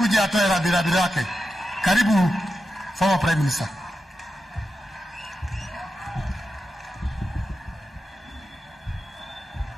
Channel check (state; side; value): normal; both; correlation 0.90